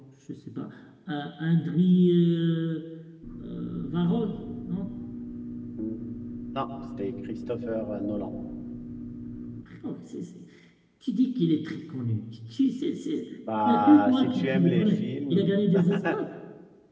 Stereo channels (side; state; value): both; identical; correlation 1.00